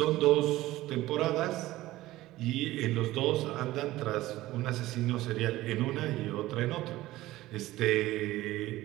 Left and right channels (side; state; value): left; quieter; 16.8 dB